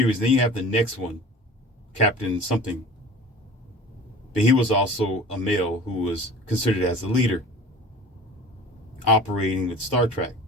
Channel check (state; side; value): normal; both; correlation 0.41